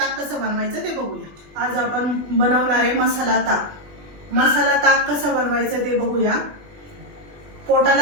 कसं बनवायचं ते बघूया। आज आपण बनवणार आहे मसाला ताक। मसाला ताक कसं बनवायचं ते बघूया।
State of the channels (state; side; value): late; left; 20 ms